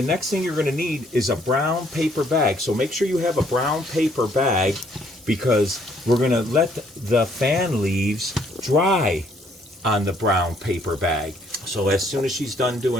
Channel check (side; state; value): both; normal; correlation 0.65